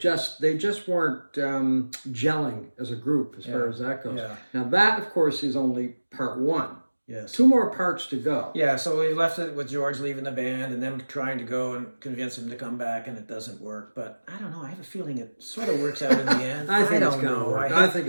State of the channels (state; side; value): inverted; both; correlation -1.00